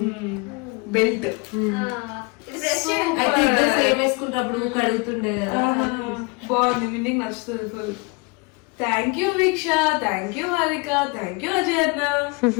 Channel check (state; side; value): quieter; right; 28.2 dB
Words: బెల్ట్ అయితే ఇద్దరు సేమ్ వేసుకుంటప్పుడు కడుగుతుండే కదా. బాగుంది, మిన్నికి నచ్చుతుంది full. Thank you Veeksha, thank you Harika, thank you Ajay అన్న.